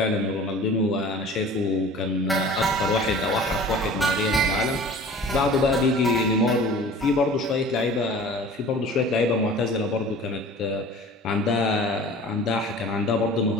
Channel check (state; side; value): normal; both; correlation 0.43